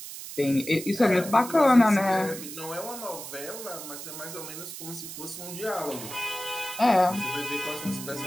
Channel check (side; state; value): right; noise; hiss, 10 dB below the sound